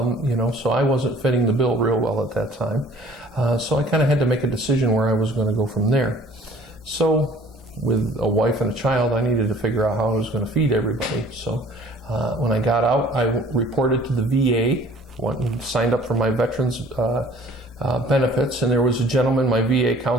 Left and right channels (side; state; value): both; normal; correlation 0.52